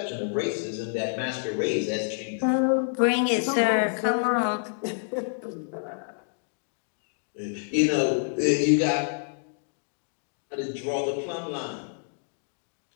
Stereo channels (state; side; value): silent; right; digital silence